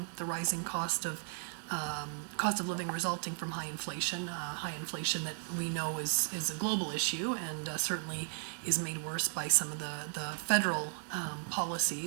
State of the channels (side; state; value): left; silent; 54 dB below the other